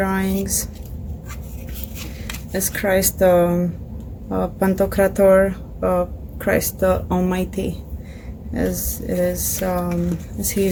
As Christ Pantocrator, Christ the Almighty, as it is, as he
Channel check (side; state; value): both; identical; correlation 1.00